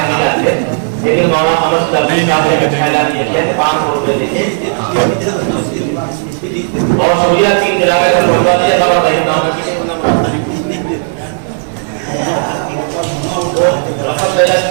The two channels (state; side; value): silent; left; digital silence